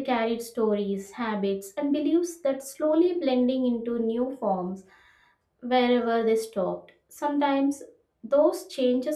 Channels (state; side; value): identical; both; correlation 1.00